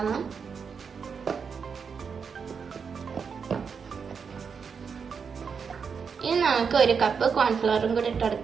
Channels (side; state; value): left; quieter; 6.1 dB